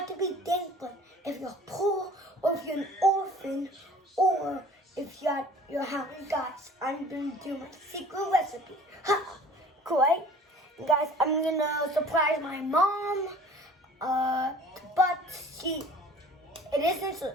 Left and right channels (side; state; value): both; normal; correlation 0.47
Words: to be thankful if you're poor or if you're an orphan or if you're hungry. Guys, I'm going to do my secret recipe. Ha! Great. Guys, I'm going to surprise my mom. But it isn't a